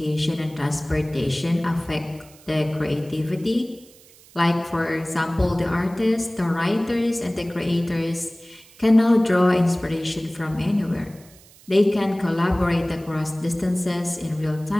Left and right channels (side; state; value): right; noise; hiss, 25 dB below the sound